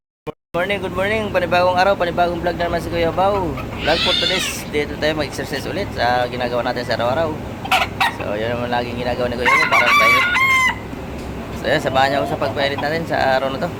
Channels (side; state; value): both; identical; correlation 1.00